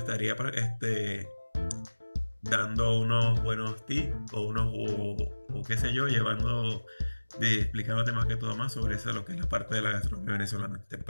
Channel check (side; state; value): both; inverted; correlation -1.00